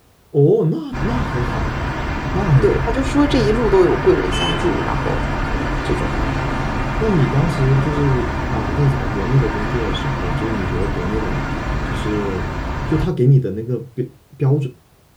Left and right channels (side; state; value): both; identical; correlation 1.00